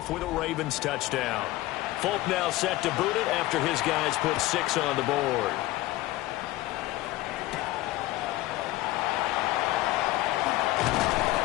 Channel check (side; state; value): right; quieter; 17.4 dB